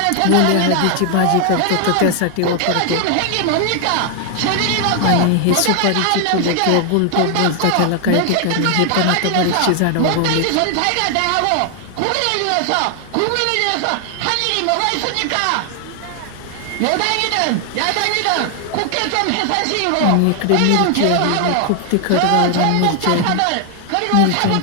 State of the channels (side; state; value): both; different; correlation 0.00